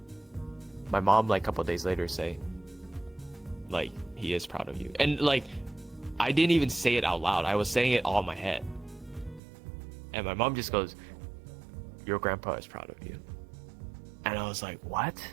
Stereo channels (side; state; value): left; drops out; at 9.4 s